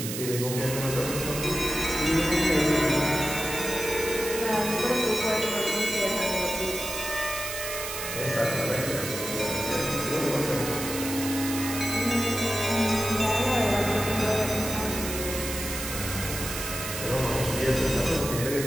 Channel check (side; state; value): right; noise; hiss, 6 dB below the sound